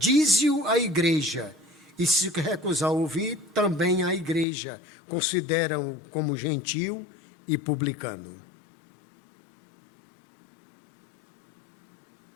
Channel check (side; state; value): right; drops out; at 4.5 s